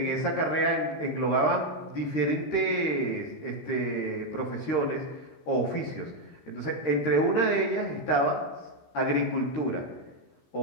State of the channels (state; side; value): late; right; 13 ms